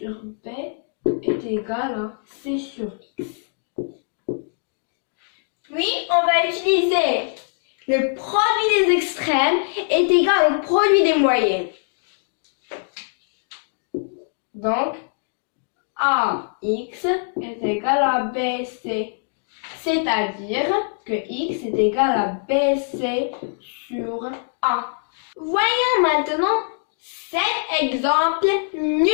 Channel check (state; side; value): silent; right; digital silence